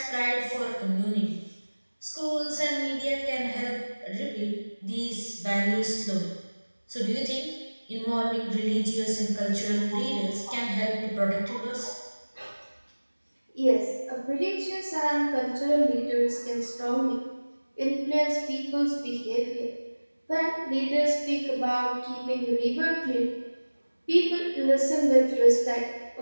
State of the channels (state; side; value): inverted; both; correlation -1.00